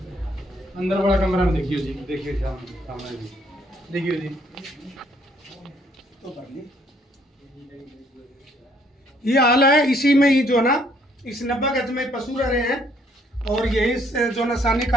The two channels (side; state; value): both; normal; correlation 0.65